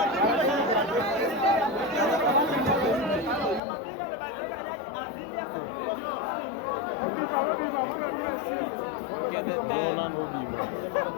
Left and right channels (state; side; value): drops out; right; at 3.6 s